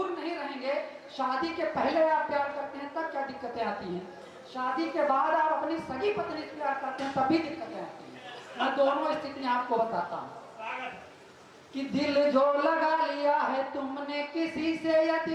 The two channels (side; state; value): both; identical; correlation 1.00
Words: नहीं रहेंगे, शादी के पहले आप प्यार करते हैं तब क्या दिक्कतें आती हैं, शादी के बाद आप अपनी सगी पत्नी से प्यार करते हैं तब भी दिक्कतें आती हैं। मैं दोनों स्थितियां आपको बताता हूँ कि दिल जो लगा लिया है तुमने किसी से,